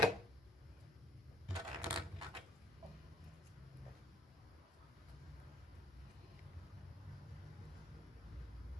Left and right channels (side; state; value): both; normal; correlation 0.62